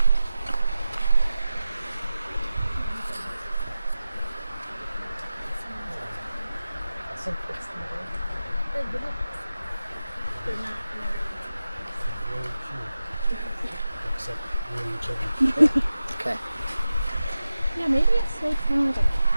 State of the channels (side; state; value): both; inverted; correlation -0.93